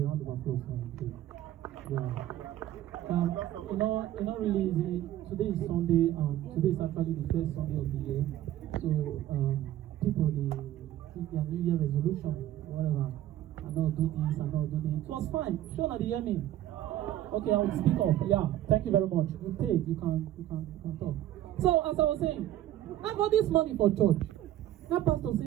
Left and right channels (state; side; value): quieter; left; 13.2 dB